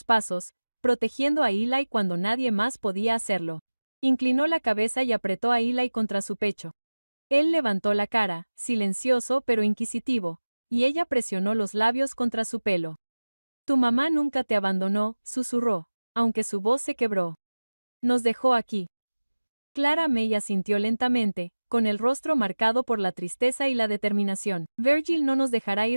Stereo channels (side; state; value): both; inverted; correlation -1.00